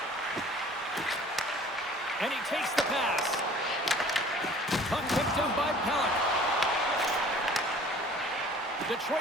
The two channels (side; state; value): both; normal; correlation 0.50